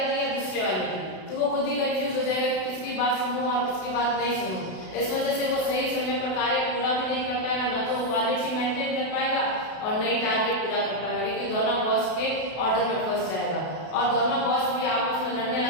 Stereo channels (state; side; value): late; right; 32 ms